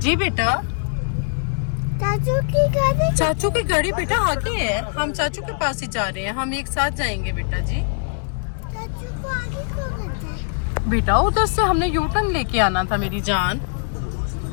बेटा, चाचू की गाड़ी, चाचू की गाड़ी बेटा आगे है, हम चाचू के पास ही जा रहे हैं, हम एक साथ जाएंगे बेटा जी। चाचू को आगे को करते हैं। बेटा उधर से हमने यू टर्न लेके आना था मेरी जान।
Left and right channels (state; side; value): silent; right; digital silence